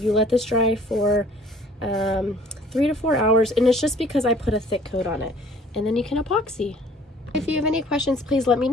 you let this dry for 3 to 4 hours, and it's just because I put a thick coat on it, and then you can epoxy. If you have any questions, please let me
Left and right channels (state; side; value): normal; both; correlation 0.54